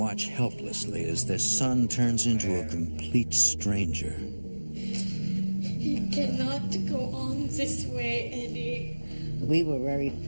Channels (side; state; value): both; inverted; correlation -1.00